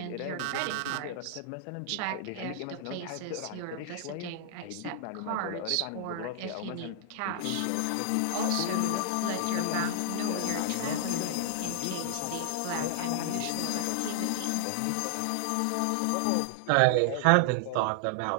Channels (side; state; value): both; different; correlation -0.01